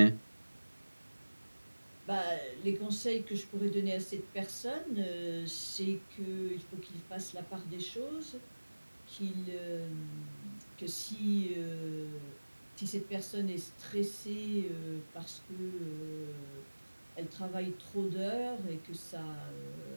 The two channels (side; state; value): both; inverted; correlation -1.00